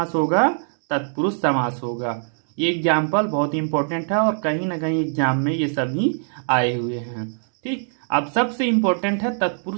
होगा? तत्पुरुष समास होगा। ये एग्जाम्पल बहुत इंपॉर्टेंट है और कहीं ना कहीं एग्जाम में ये सभी आए हुए हैं। ठीक, अब सबसे इंपॉर्टेंट है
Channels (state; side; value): silent; left; 64 dB below the other